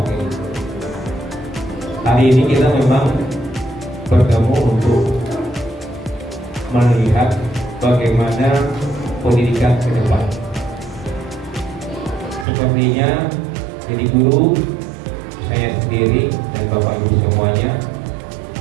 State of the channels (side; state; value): left; drops out; at 12.5 s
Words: Hari ini kita memang bertemu untuk melihat bagaimana pendidikan ke depan. Sepertinya jadi guru, saya sendiri dan Bapak Ibu semuanya